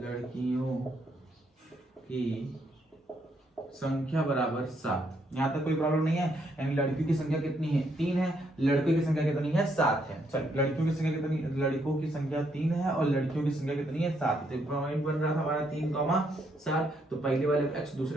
की संख्या बराबर 7। यहाँ तक कोई प्रॉब्लम नहीं है, यानी लड़कियों की संख्या कितनी है 3 है, लड़कों की संख्या कितनी है 7 है। चल, लड़कियों की संख्या कितनी, लड़कों की संख्या 3 है और लड़कियों की संख्या कितनी है 7। तो पॉइंट बन रहा था हमारा 3,7, तो पहले वाले को x,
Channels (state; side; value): normal; both; correlation 0.74